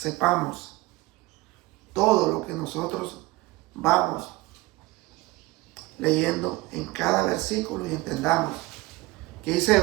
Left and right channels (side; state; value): left; quieter; 20.7 dB